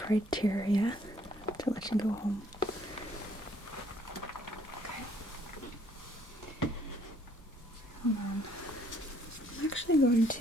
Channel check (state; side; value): normal; both; correlation 0.65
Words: criteria to let you go home. Okay. Hold on. I'm actually going